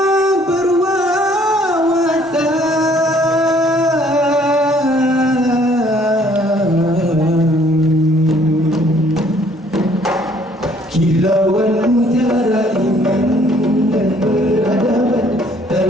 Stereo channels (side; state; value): both; normal; correlation 0.61